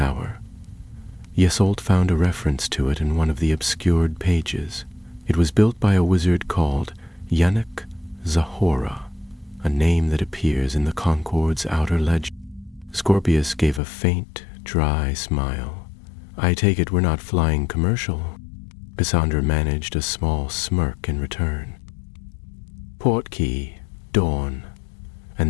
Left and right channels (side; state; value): right; drops out; at 13.8 s